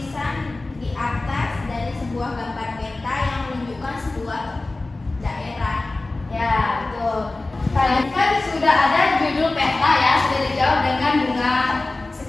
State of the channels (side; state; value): right; quieter; 3.1 dB